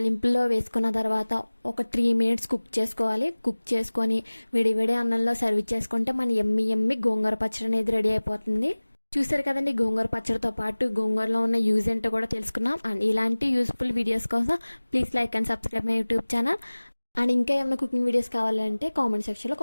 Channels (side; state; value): both; inverted; correlation -1.00